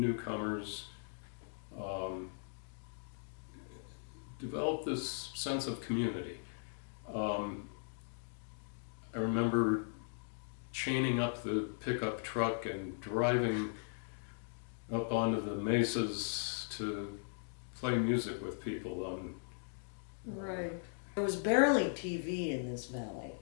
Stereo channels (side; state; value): right; silent; digital silence